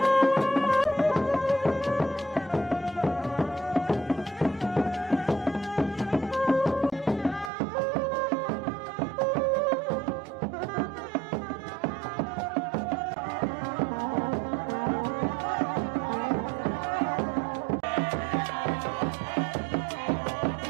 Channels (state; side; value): drops out; left; at 7.5 s